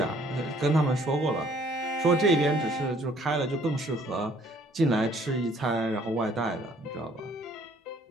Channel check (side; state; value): both; normal; correlation 0.61